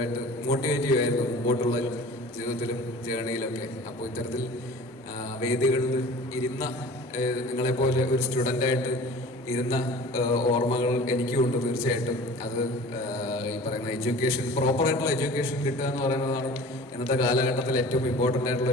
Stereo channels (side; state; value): both; normal; correlation 0.42